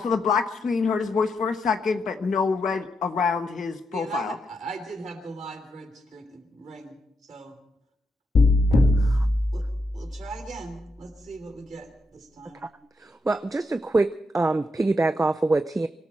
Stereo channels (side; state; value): both; normal; correlation 0.82